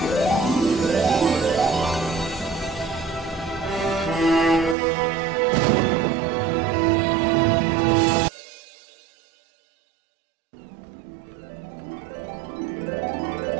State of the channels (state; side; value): drops out; left; at 4.8 s